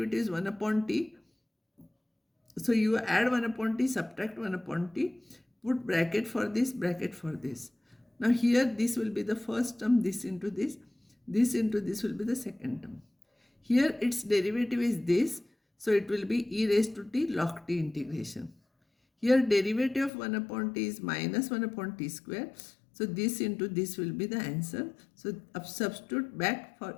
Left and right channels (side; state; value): right; drops out; at 20.1 s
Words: is 1 upon t. So you add 1 upon t, subtract 1 upon t, put bracket for this, bracket for this. Now here this will be the first term, this into this into this will be the second term. Here its derivative is this, so it will be e raised to t log t integration. Here derivative of 1 upon t is minus 1 upon t square. So this into this will be the answer. So substitute back for